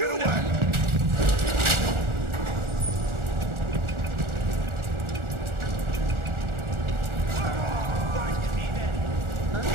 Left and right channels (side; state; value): left; late; 1.4 ms